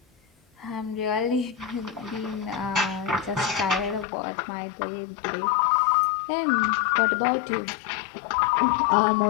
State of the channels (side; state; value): right; drops out; at 4.0 s